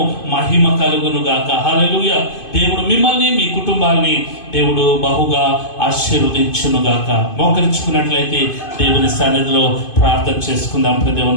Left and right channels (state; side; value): late; right; 2.5 ms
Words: మహిమ కలుగును గాక. హల్లెలూయా. దేవుడు మిమ్మల్ని మీ కుటుంబాన్ని దేవుడు బహుగా ఆశీర్వదించును గాక. మోకరించుకున్నట్లయితే దేవుని సన్నిధిలో ప్రార్థన చేసుకుందాం.